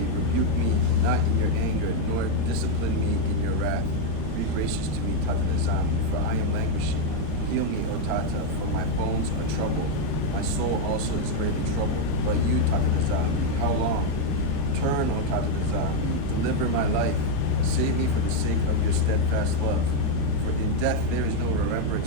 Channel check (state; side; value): different; both; correlation 0.01